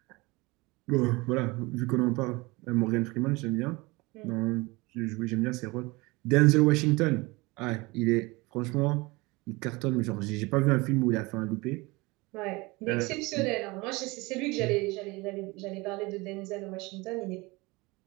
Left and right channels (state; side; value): quieter; left; 23.8 dB